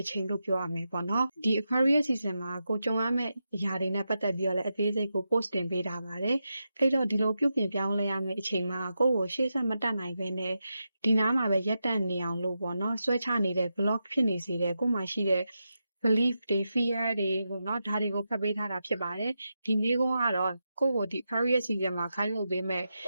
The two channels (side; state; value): both; inverted; correlation -0.88